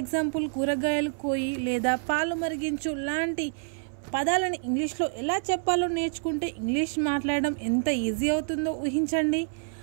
కూరగాయలు కోయి లేదా పాలు మరిగించు లాంటి పదాలను ఇంగ్లీష్లో ఎలా చెప్పాలో నేర్చుకుంటే ఇంగ్లీష్ మాట్లాడడం ఎంత ఈజీ అవుతుందో ఊహించండి.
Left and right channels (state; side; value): silent; left; 60 dB below the other